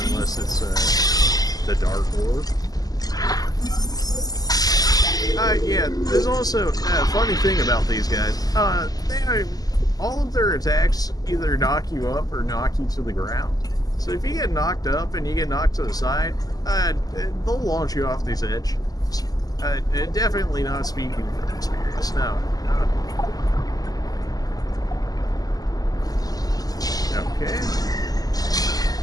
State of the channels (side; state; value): right; late; 0.18 ms